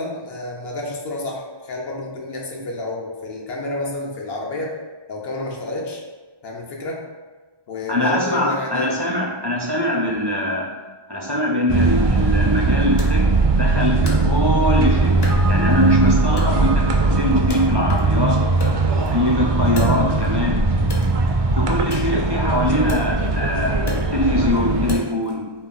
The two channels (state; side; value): late; left; 1.2 ms